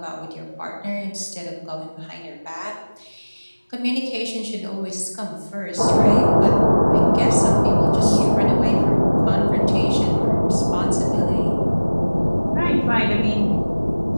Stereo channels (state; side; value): inverted; both; correlation -1.00